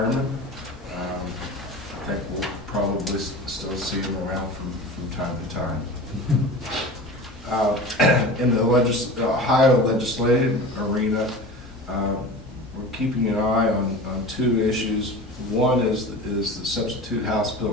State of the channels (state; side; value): normal; both; correlation 0.34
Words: I think we'll probably still see him around from time to time. In the Ohio legislative arena, we're keeping an eye on two issues. One is the substitute House